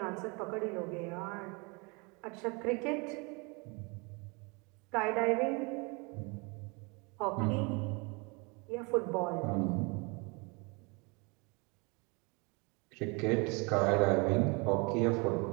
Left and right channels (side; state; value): left; quieter; 29.8 dB